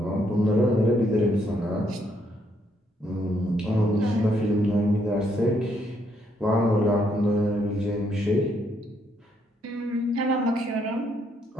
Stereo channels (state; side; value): normal; both; correlation 0.73